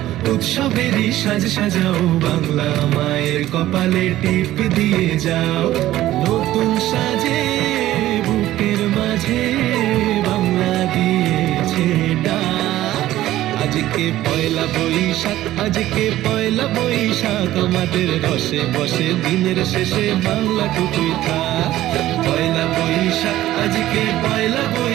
উৎসবেরই সাজ সাজাও বাংলা মায়ের কপালে টিপ দিয়ে যাও নতুন সাজে বুকের মাঝে বাংলা দিয়েছে ডাক আজকে পয়লা বৈশাখ আজকে পয়লা বৈশাখ আমাদের রসে বসে দিনের শেষে বাংলা টুকুই থাক পয়লা বৈশাখ আজকে পয়লা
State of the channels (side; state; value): left; quieter; 14.6 dB